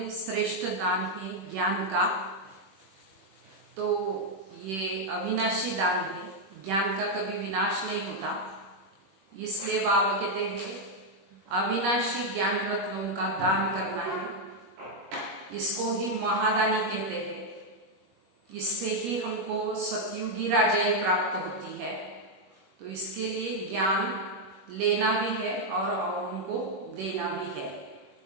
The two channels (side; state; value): left; late; 21 ms